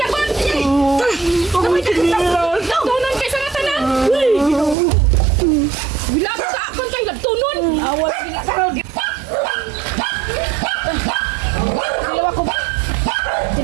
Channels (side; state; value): left; drops out; at 4.8 s